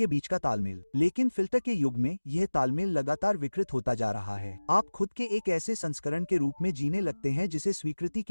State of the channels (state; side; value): inverted; both; correlation -1.00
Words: बीच का तालमेल। लेकिन फिल्टर के युग में यह तालमेल लगातार विकृत होता जा रहा है। आप खुद के एक ऐसे संस्करण के रूप में जीने लगते हैं जिसे स्वीकृति